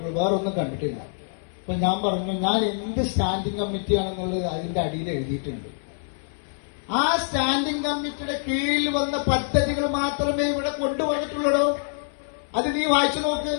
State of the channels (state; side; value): silent; right; 60 dB below the other